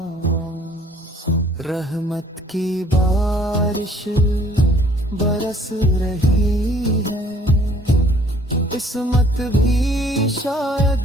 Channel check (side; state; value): both; normal; correlation 0.58